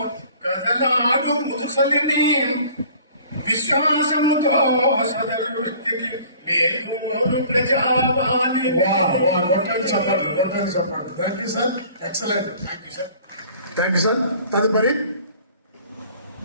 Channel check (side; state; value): both; inverted; correlation -0.50